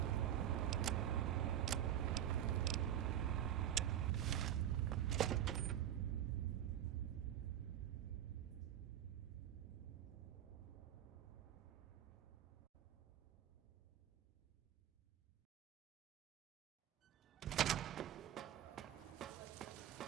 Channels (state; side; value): quieter; left; 11.0 dB